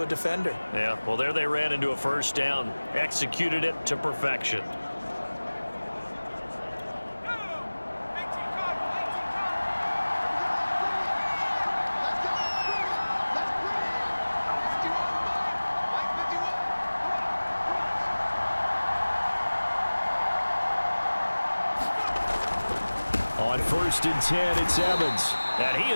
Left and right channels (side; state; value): both; inverted; correlation -1.00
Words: a defender. Yeah, well, there they ran into a first down. Executed it to perfection. On 1st and 10, it's Evans. And he